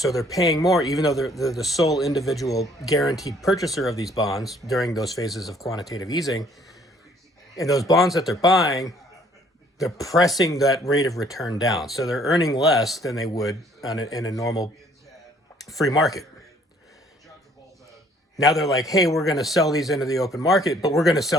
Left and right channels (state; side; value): normal; both; correlation 0.60